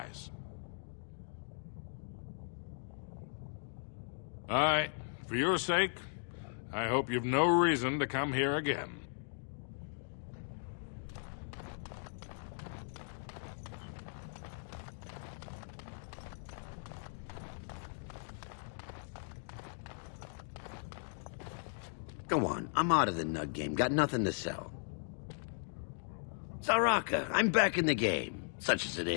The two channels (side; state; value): right; silent; digital silence